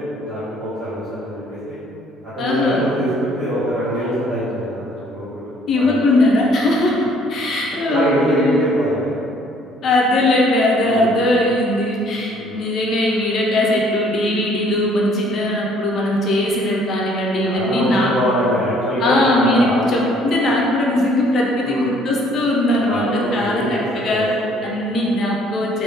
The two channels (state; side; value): normal; both; correlation 0.60